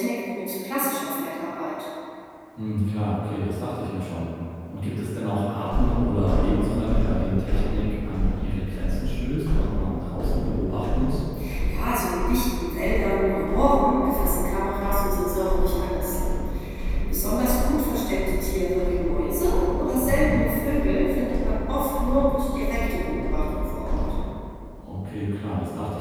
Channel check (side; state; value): both; identical; correlation 1.00